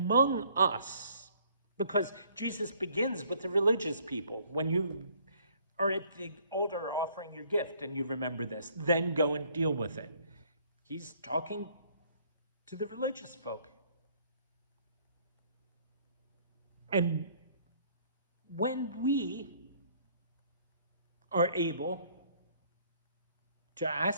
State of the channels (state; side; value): inverted; both; correlation -0.61